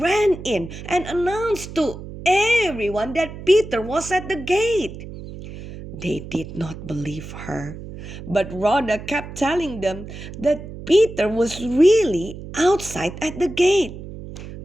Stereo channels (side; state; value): right; noise; hum, 12 dB below the sound